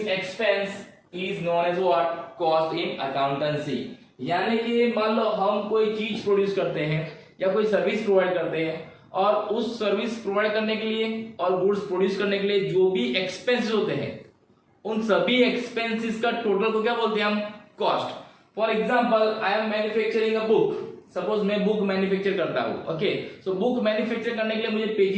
expense is known as what? Cost in accountancy. यानी कि मान लो हम कोई चीज प्रोड्यूस करते हैं या कोई सर्विस प्रोवाइड करते हैं और उस सर्विस प्रोवाइड करने के लिए और गुड्स प्रोड्यूस करने के लिए जो भी एक्सपेंसेस होते हैं, उन सभी एक्सपेंसेस का टोटल को क्या बोलते हैं हम? Cost. For example, I am manufacturing a book. Suppose मैं बुक मैन्युफैक्चर करता हूँ. ओके, सो बुक मैन्युफैक्चर करने के लिए मुझे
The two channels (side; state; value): both; identical; correlation 1.00